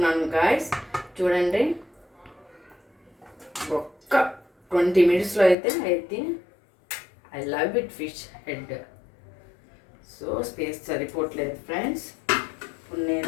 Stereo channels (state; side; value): drops out; right; at 5.6 s